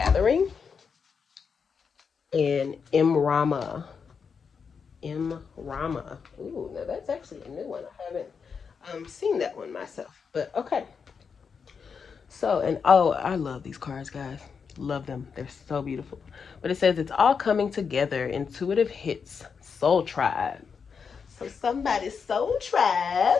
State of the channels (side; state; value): right; quieter; 6.0 dB